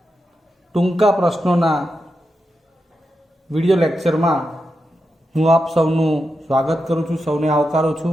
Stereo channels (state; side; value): normal; both; correlation 0.87